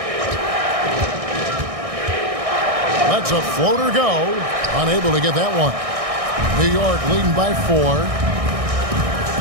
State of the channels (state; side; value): late; left; 1.6 ms